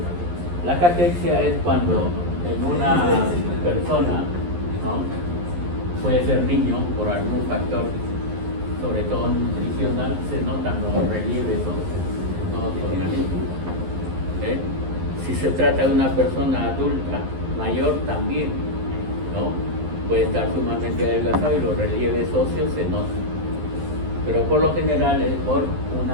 la caquexia es cuando en una persona, ¿no?, puede ser niño por algún factor, sobre todo nutricional, se notan los relieves en todo su organismo. Si se trata de una persona adulta, mayor también, ¿no?, puede estar sumamente adelgazado y los relieves óseos se notan. Pero por lo general es por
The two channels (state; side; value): late; left; 11 ms